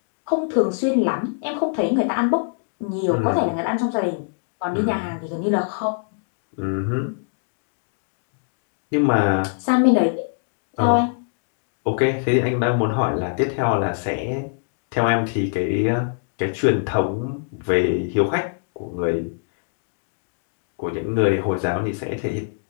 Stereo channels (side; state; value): right; silent; digital silence